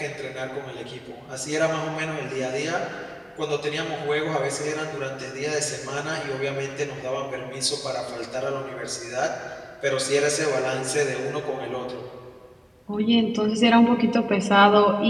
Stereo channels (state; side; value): identical; both; correlation 1.00